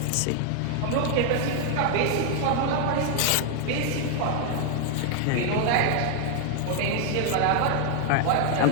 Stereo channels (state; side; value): different; both; correlation 0.00